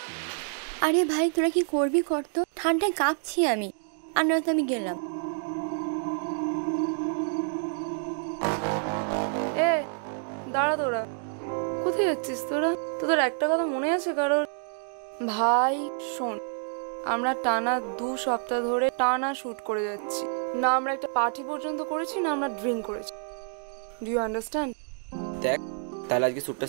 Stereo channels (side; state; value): left; silent; 56 dB below the other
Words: আরে ভাই তোরা কি করবি কর তো, ঠান্ডায় কাঁপছি আমি। আর নয়তো আমি গেলাম। এ দাঁড়া, তোরা কোথায় যাচ্ছিস? তোদের একটা কথা মনে আছে কারোর? ভাই শোন, আমরা টানা 2 সপ্তাহ ধরে টানা শুট করে যাচ্ছি না, আমরা একটা পার্টি পর্যন্ত করেছি না, আমরা ড্রিঙ্ক করেছি। Do you understand? দেখ তাহলে আজকে শ্যুটটা